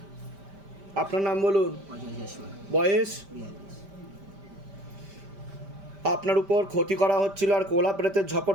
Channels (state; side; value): late; left; 5.1 ms